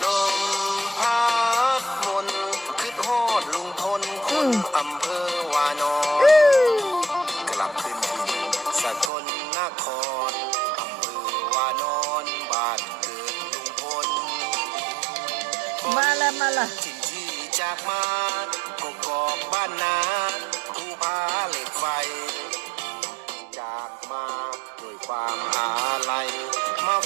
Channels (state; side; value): drops out; left; at 9.1 s